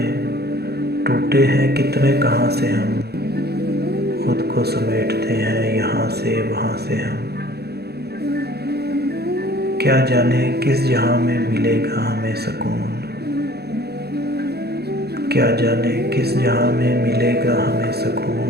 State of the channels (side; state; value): left; late; 0.47 ms